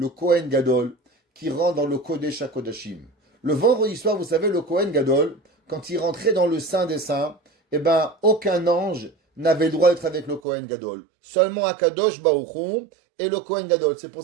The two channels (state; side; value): drops out; left; at 10.4 s